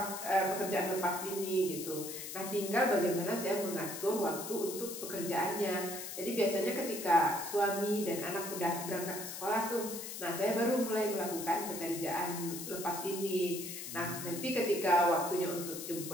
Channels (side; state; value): left; noise; hiss, 8 dB below the sound